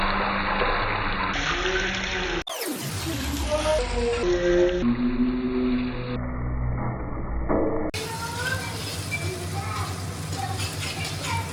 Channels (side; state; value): both; identical; correlation 1.00